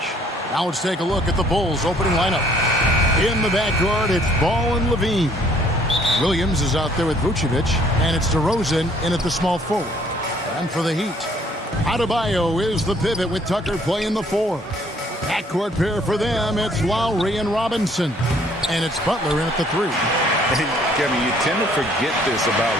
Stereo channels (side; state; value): both; normal; correlation 0.61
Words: Now let's take a look at the Bulls' opening lineup. In the backcourt, it's Ball and Levine. Williams is out there with Vucevic, and it's DeRozan in at the small forward. And for the Heat, Adebayo is the pivot with Tucker playing the 4. Backcourt pair for them, it's Lowry and Robinson. And it's Butler in at the 3. Kevin, you tend to forget this about